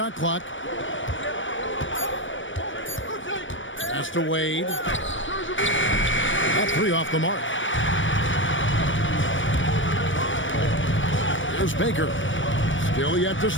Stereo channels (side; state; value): right; late; 0.56 ms